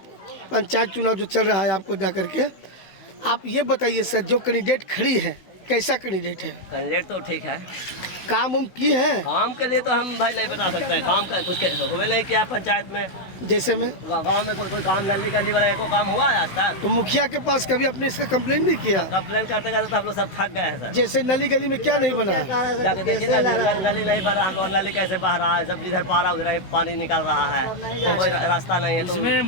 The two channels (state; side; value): late; right; 16 ms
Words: पंचायत चुनाव जो चल रहा है आपको जा करके, आप ये बताइए सर, जो कैंडिडेट खड़ी है कैसा कैंडिडेट है? कैंडिडेट तो ठीक है, काम उम की है? काम के लिए तो हम भाई नहीं बता सकते हैं, काम का कुछ हुए नहीं किया पंचायत में, जैसे में गांव में कोई काम नली गली वाला को काम हुआ है आज तक? तो मुखिया के पास कभी अपने इसका कंप्लेन नहीं किया? कंप्लेन करते करते तो हम लोग सब थक गए हैं सर। जैसे नली गली में क्या नहीं बना है? जाके देखिए ना, नली नहीं बन रहा, हम लोग नली कैसे बह रहा है, सब जिधर पारा उधर ही पानी निकल रहा है, तो कोई रास्ता नहीं है। तो इसमें